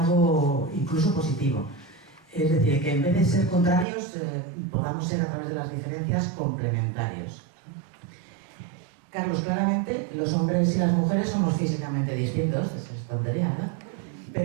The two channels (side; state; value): left; drops out; at 3.9 s